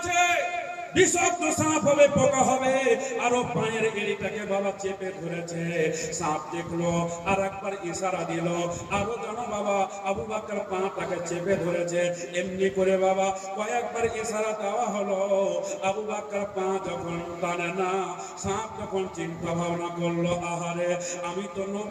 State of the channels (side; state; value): both; identical; correlation 1.00